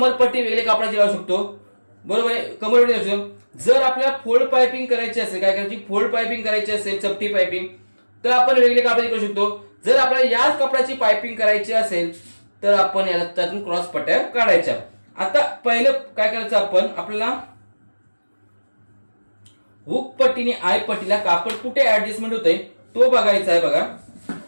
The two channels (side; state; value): both; inverted; correlation -1.00